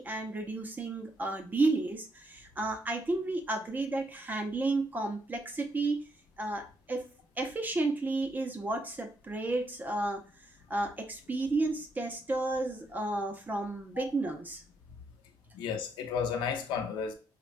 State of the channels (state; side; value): normal; both; correlation 0.76